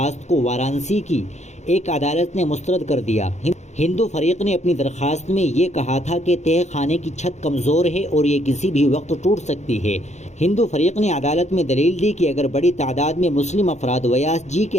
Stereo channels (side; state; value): right; late; 0.33 ms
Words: کو وارانسی کی ایک عدالت نے مسترد کر دیا۔ ہندو فریق نے اپنی درخواست میں یہ کہا تھا کہ تہہ خانے کی چھت کمزور ہے اور یہ کسی بھی وقت ٹوٹ سکتی ہے۔ ہندو فریق نے عدالت میں دلیل دی کہ اگر بڑی تعداد میں مسلم افراد ویاس جی